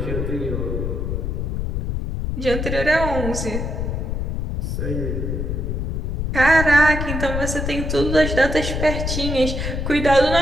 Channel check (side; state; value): left; noise; rumble, 2 dB below the sound